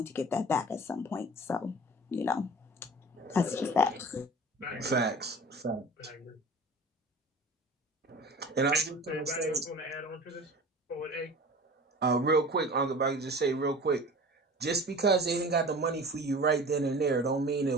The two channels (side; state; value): both; normal; correlation 0.40